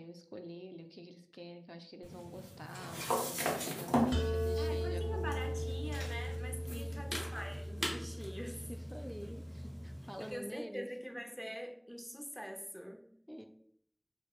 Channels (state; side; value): identical; both; correlation 1.00